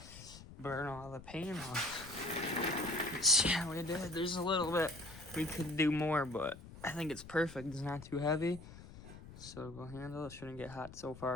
burn all the paint off. See how we did. There's a little bit we could do more, but I think it's perfect. It's not too heavy. So we'll handle it. Shouldn't get hot so far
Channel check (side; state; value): left; noise; rumble, 16 dB below the sound